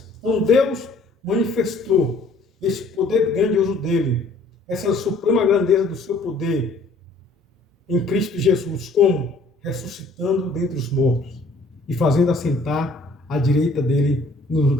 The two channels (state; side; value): quieter; right; 3.0 dB